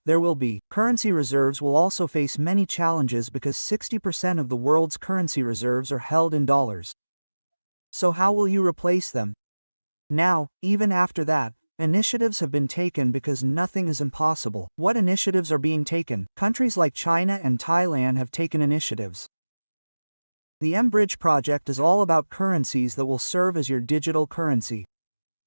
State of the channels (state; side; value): inverted; both; correlation -1.00